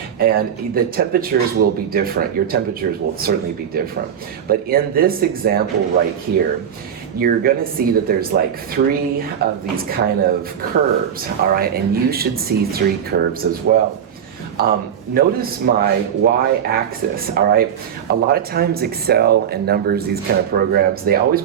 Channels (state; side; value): quieter; left; 8.7 dB